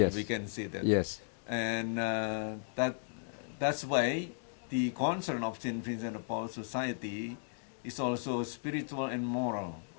we can say that. Yes. And that's why the concern of St. Vincent de Paul Society is also spiritual and moral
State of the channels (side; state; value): right; silent; digital silence